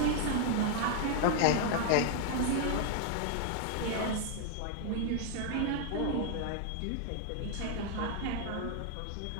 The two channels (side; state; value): both; different; correlation 0.00